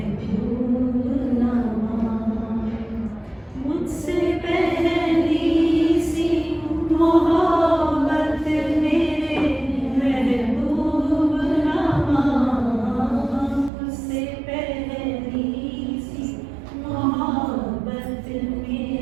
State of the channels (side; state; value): left; drops out; at 13.7 s